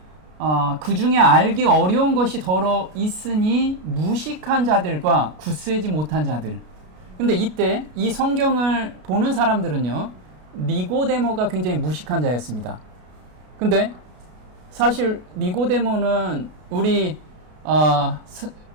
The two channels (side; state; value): left; late; 33 ms